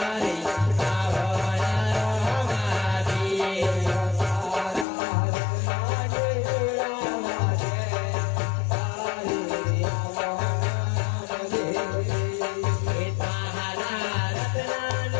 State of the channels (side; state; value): right; drops out; at 4.9 s